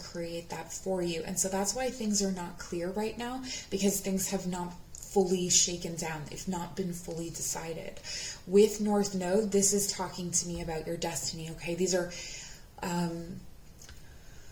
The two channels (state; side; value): identical; both; correlation 1.00